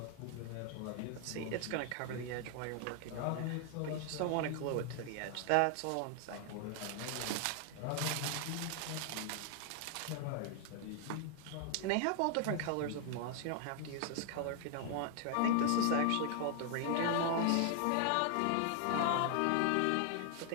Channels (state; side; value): different; both; correlation 0.00